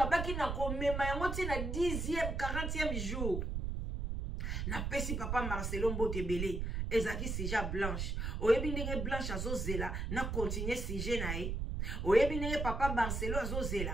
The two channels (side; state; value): right; noise; rumble, 2 dB below the sound